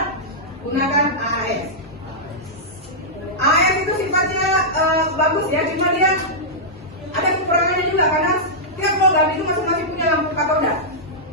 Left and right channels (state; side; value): normal; both; correlation -0.11